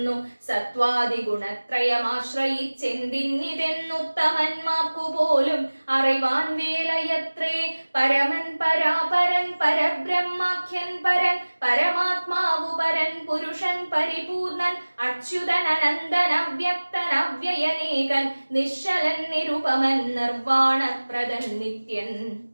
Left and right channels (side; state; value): both; inverted; correlation -1.00